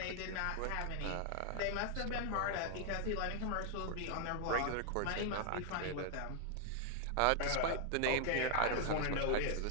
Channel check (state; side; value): different; both; correlation 0.00